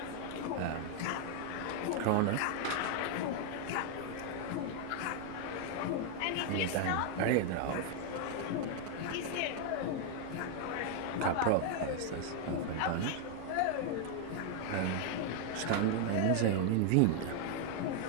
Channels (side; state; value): both; different; correlation 0.00